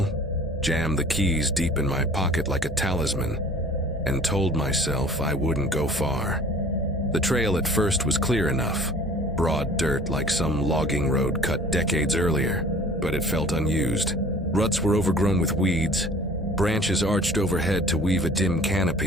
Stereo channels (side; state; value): both; normal; correlation 0.48